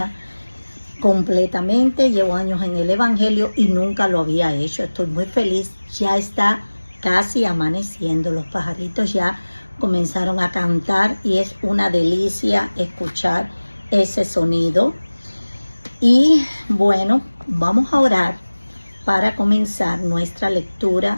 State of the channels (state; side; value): inverted; both; correlation -1.00